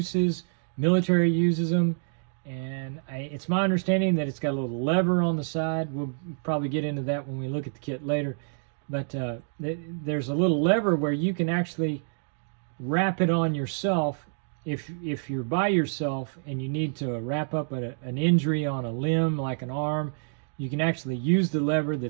Military uses them, and it's my understanding that it's got a little lever on the side. We'll probably get into that when we look at the kit later. But there's a little lever where you can actually wrap it on yourself. If you're by yourself and you need to wrap up an injury on a limb, like an arm, you can actually use the lever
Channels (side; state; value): left; silent; digital silence